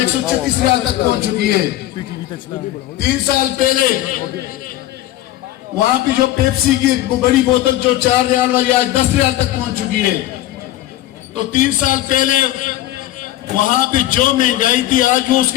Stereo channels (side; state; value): right; quieter; 14.7 dB